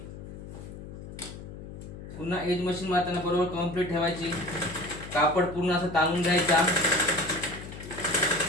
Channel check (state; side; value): noise; left; hum, 12 dB below the sound